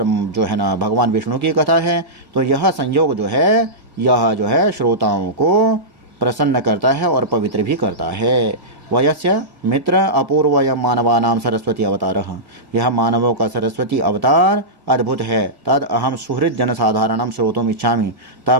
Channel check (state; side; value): late; left; 1.6 ms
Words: जो है ना भगवान विष्णु की कथा है। तो यह संयोग जो है यह जो है श्रोताओं को प्रसन्न करता है और पवित्र भी करता है। वयस्य मित्र अपूर्वय मानवानाम सरस्वती अवतारः, यह मानवों का सरस्वती अवतार अद्भुत है। तद अहम सुहृद जनसाधारणम श्रोतुम इच्छामि,